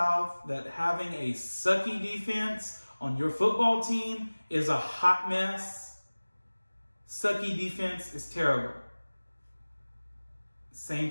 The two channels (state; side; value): inverted; both; correlation -1.00